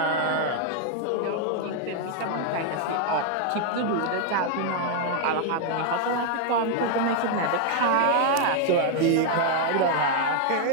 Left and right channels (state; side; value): different; both; correlation 0.00